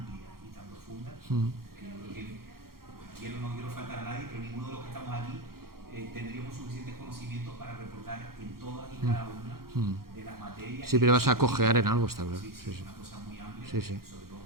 y tan profunda, que yo creo que no quiero faltar a nadie, pero ninguno de los que estamos aquí tendríamos suficientes conocimientos para reportar en todas y cada una de las materias. Sí, pero vas a cojear en algo, está claro. Sí, sí, es una cosa muy amplia, sí, sí. sobre todo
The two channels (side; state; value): left; late; 0.93 ms